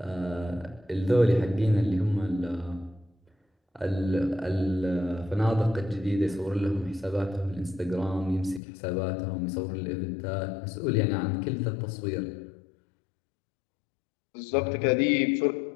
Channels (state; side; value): drops out; right; at 8.6 s